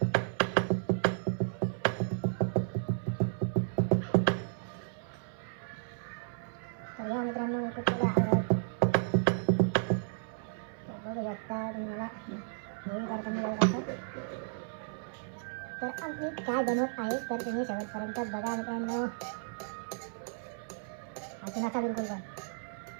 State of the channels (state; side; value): silent; left; 55 dB below the other